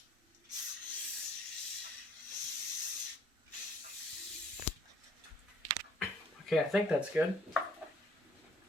Okay, I think that's good.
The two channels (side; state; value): both; normal; correlation 0.60